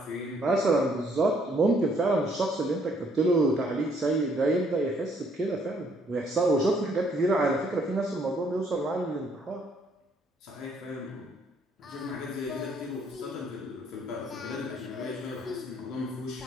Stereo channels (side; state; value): both; normal; correlation 0.66